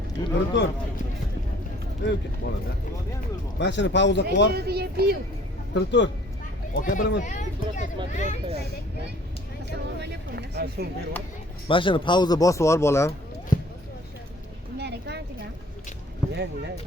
Turib tur. Mashina pauza qilib. Turib tur. Aka bilaman. Mashina pauza bosib yubor bolam. Amerikan ekan.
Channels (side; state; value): both; normal; correlation 0.54